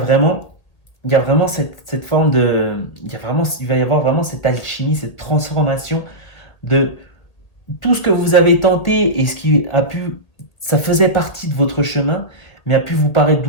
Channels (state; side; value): late; right; 1.8 ms